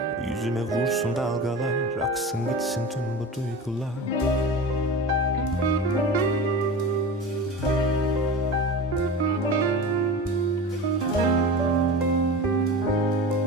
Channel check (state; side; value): normal; both; correlation 0.31